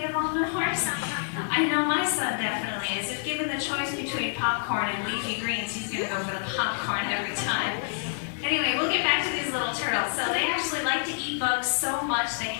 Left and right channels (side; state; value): right; silent; 60 dB below the other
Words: omnivores. I know my son definitely is. If given the choice between popcorn and leafy greens, he's going to go for the popcorn every time. Anyway, we'll get back to these little turtles. So they actually like to eat bugs so much they